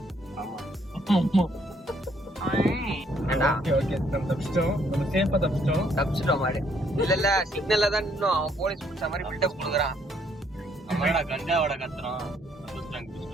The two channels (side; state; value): both; normal; correlation 0.68